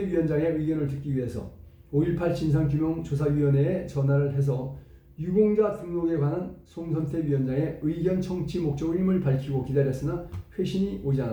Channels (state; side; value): identical; both; correlation 1.00